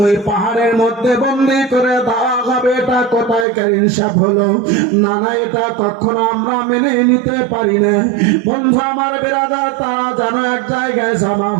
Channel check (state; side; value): drops out; left; at 3.5 s